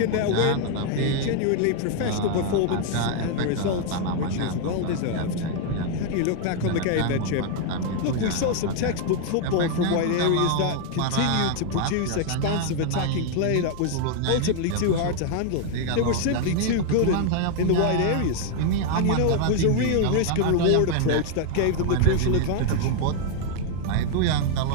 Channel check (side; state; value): both; different; correlation 0.00